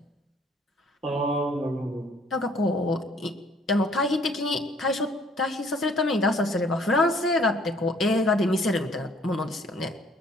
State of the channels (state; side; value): normal; both; correlation 0.60